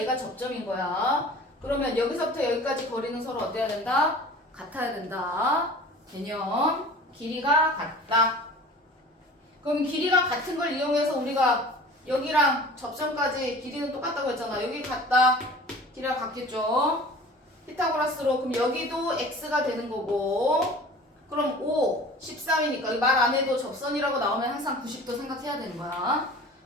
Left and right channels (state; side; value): normal; both; correlation 0.42